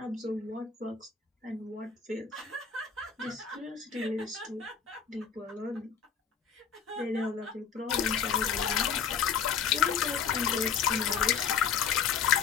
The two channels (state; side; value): quieter; right; 6.9 dB